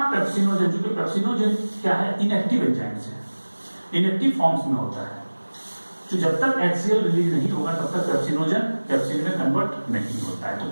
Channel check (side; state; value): both; inverted; correlation -1.00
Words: पेप्सिनोजन, जो कि पेप्सिनोजन क्या है, इनएक्टिव एंजाइम्स है, इनएक्टिव फॉर्म्स में होता है। तो जब तक HCl रिलीज नहीं होगा तब तक पेप्सिनोजन पेप्सिन में कन्वर्ट नहीं होता है। तो